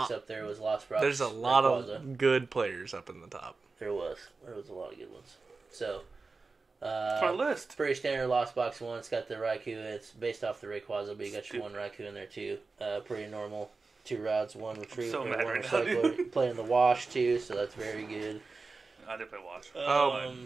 up there was Lost Box. There's a lot of good players up in the top. There was a lot of good ones. So it's my list. Pretty standard Lost Box 1. It's got the Raikou. It's based off the Rayquaza, but you got your 1 Raikou in there too. Pretty normal. 2 routes, 1 retrieve, so 1 right recycler. Playing the Wash too, so that's very good. I did play Wash.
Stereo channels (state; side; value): quieter; left; 4.0 dB